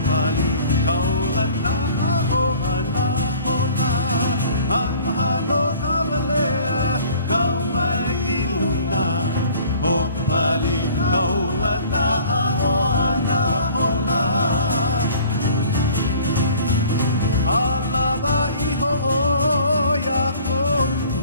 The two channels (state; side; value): inverted; both; correlation -0.50